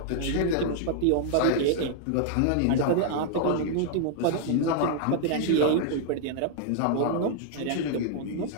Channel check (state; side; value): different; both; correlation 0.00